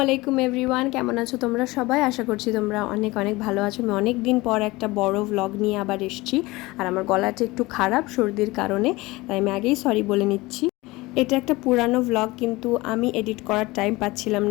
আলাইকুম এভরিওয়ান, কেমন আছো তোমরা সবাই? আশা করছি তোমরা অনেক অনেক ভালো আছো। আমি অনেক দিন পর একটা বড় ভ্লগ নিয়ে আবার এসেছি। আর আমার গলাটা একটু খারাপ সর্দির কারণে, তাই আমি আগেই সরি বলে নিচ্ছি। এটা একটা পুরানো ভ্লগ, কিন্তু আমি এডিট করার টাইম পাচ্ছিলাম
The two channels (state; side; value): quieter; right; 21.2 dB